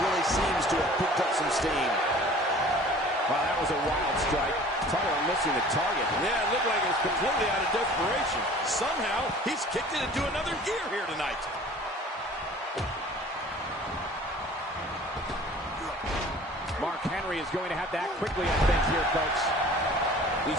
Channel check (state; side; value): normal; both; correlation 0.47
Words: seems to have picked up some steam. Wow, that was a wild strike. Talk about missing the target. Yeah, it looked like it was completely out of desperation. Somehow, he's kicked it into another gear here tonight. Mark Henry is going to have to act quickly, I think, here, folks.